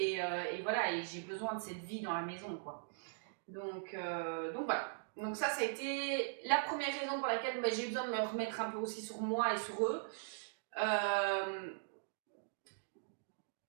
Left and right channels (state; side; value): silent; left; digital silence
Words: voilà, et j'ai besoin de cette vie dans la maison, quoi. Donc voilà. Donc ça a été la première raison pour laquelle j'ai besoin de me remettre un peu aussi sur moi et sur eux.